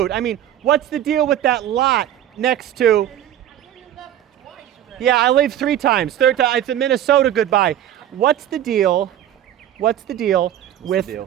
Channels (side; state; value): left; quieter; 11.4 dB